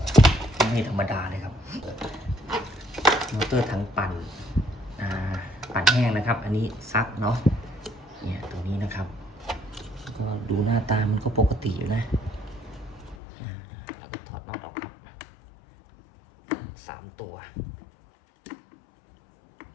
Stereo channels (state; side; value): drops out; right; at 13.2 s